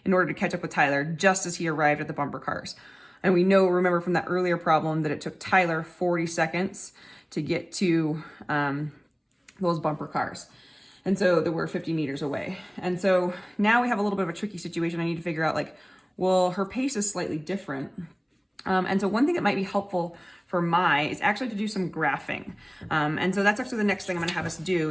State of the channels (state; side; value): identical; both; correlation 1.00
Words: in order to catch up with Tyler just as he arrived at the bumper cars. And we remember from that earlier problem that it took Tyler 40 seconds to get to those bumper cars. And so they were 50 meters away. And so now we have a little bit of a tricky situation. I need to figure out, like, well, her pace is slightly different. And so one thing that might be helpful for Mai is actually to do some graphing. And so that's actually the next thing I'm going to have us do,